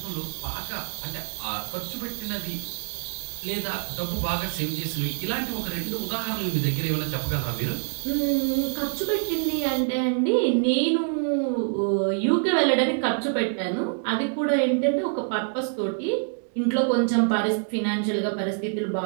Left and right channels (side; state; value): left; silent; digital silence